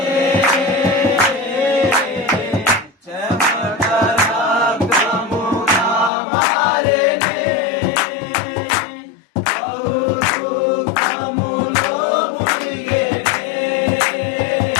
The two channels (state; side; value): drops out; right; at 6.1 s